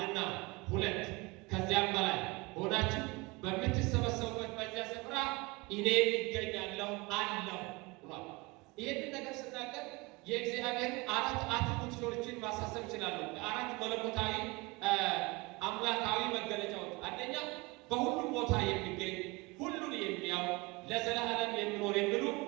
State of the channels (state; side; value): quieter; left; 25.2 dB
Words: ሁለት ከዚያም በላይ ሆናችሁ በምትሰበሰቡበት በዚያ ስፍራ እኔ ይገኛለሁ አለው ብሏል። ይህንን ነገር ስናገር የእግዚአብሔር አራት አትሪቡቶችን ማሳሰብ ይችላሉ። አራት መለኮታዊ አምላካዊ መገለጫዎች። አንደኛ በሁሉም ቦታ የሚገኝ ሁሉን የሚያው ለዘላለም የሚኖር የሚሉ